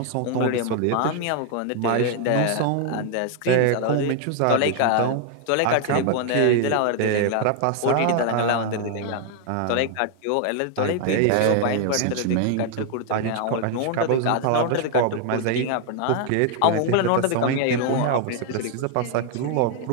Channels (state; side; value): different; both; correlation 0.00